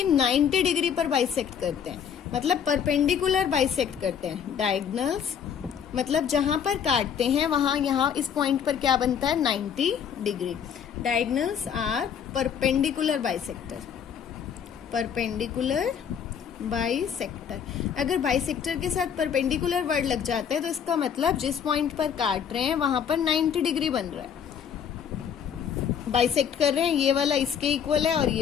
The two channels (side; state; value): right; quieter; 8.0 dB